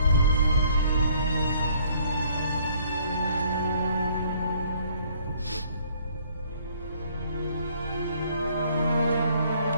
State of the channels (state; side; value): inverted; both; correlation -0.61